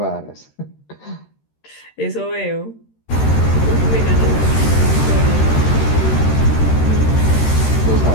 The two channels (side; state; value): right; late; 13 ms